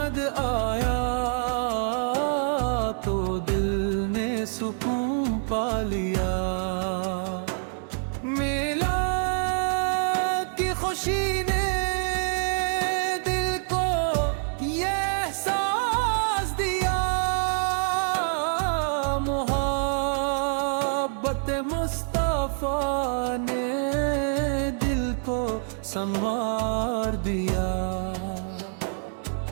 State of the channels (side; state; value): left; silent; 61 dB below the other